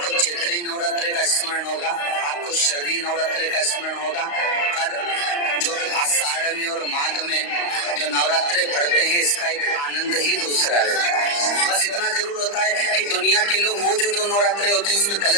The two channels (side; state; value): right; late; 35 ms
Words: चैत्री नवरात्रि का स्मरण होगा, आपको शरदी नवरात्रि का स्मरण होगा, और जो आषाढ़ में और माघ में जो नवरात्रे पढ़ते हैं इसका एक आनंद ही दूसरा रहता है। बस इतना जरूर होता है कि दुनिया के लोग वो जो 2 नवरात्रे होते हैं उसमें